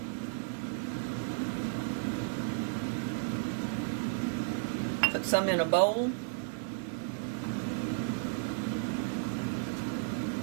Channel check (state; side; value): silent; left; digital silence